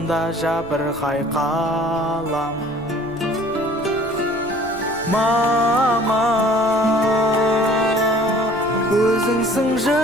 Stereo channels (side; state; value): left; noise; rumble, 22 dB below the sound